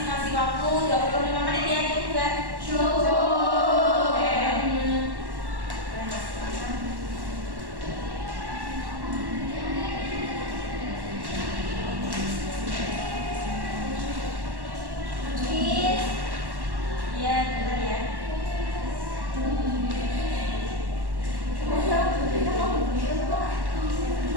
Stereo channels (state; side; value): late; left; 1.1 ms